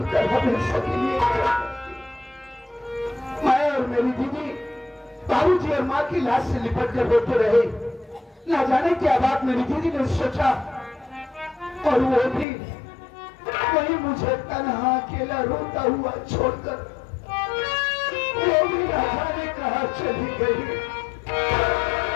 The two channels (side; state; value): right; drops out; at 12.5 s